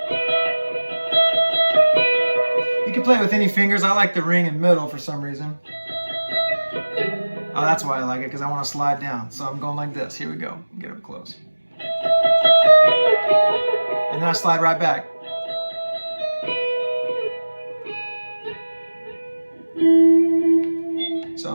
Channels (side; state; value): both; inverted; correlation -1.00